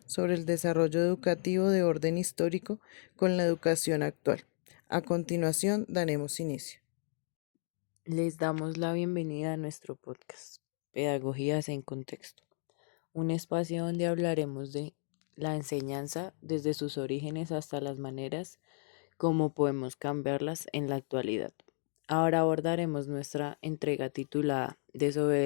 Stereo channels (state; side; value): silent; right; 55 dB below the other